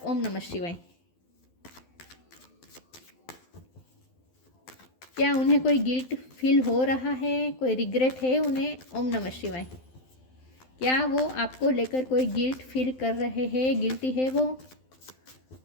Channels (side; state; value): right; late; 12 ms